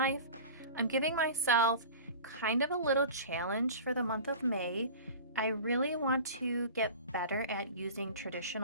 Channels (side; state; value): both; inverted; correlation -0.37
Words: I'm giving myself kind of a little challenge for the month of May. I really want to get better at using